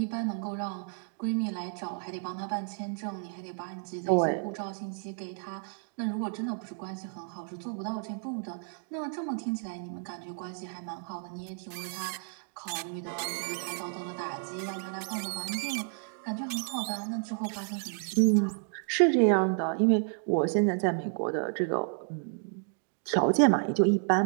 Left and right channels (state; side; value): silent; left; 57 dB below the other